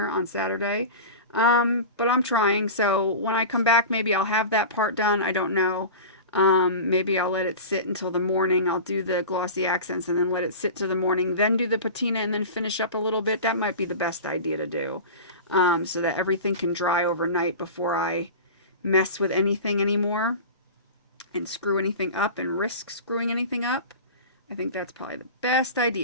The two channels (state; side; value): inverted; both; correlation -0.32